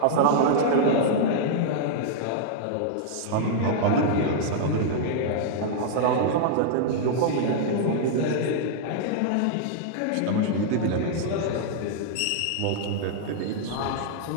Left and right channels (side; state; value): both; different; correlation -0.01